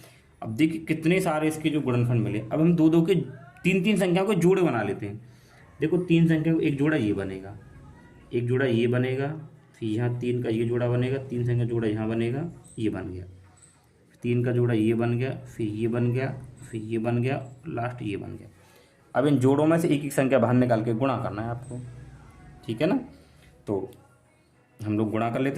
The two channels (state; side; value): identical; both; correlation 1.00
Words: अब देखिए कितने सारे इसके जो गुणनखंड मिले। अब हम दो दो के 3 संख्याओं को जोड़े बना लेते हैं। देखो 3 संख्या को एक जोड़ा ये बनेगा, एक जोड़ा ये बनेगा, फिर यहाँ 3 का ये जोड़ा बनेगा, 3 संख्या जोड़ा यहाँ बनेगा, ये बन गया, 3 का जोड़ा ये बन गया, फिर ये बन गया, फिर ये बन गया, लास्ट ये बन गया। अब इन जोड़ों में से एक एक संख्या बाहर निकाल के गुणा करना है आपको, ठीक है ना। तो हम लोग गुणा कर